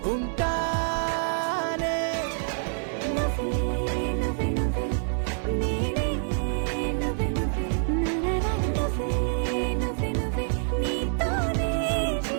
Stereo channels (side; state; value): left; silent; 55 dB below the other